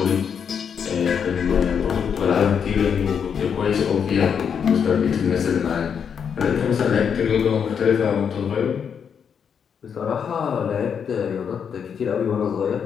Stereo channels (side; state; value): right; quieter; 7.2 dB